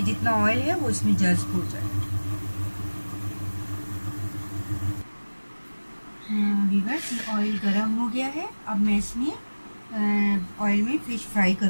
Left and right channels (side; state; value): both; inverted; correlation -1.00